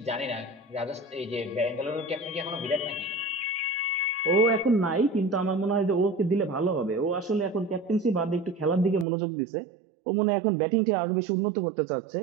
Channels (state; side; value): drops out; left; at 9.1 s